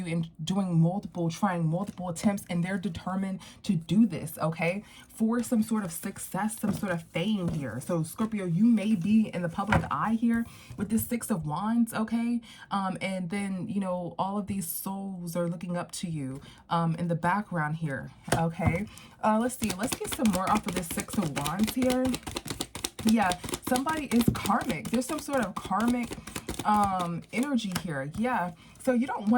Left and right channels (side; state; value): both; identical; correlation 1.00